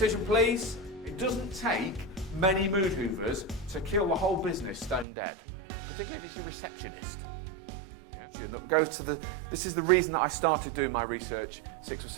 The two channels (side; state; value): left; drops out; at 5.1 s